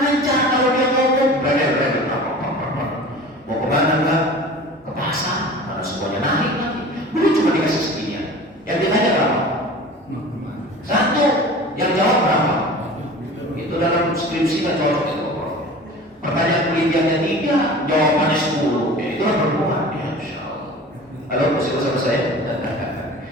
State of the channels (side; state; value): both; normal; correlation 0.39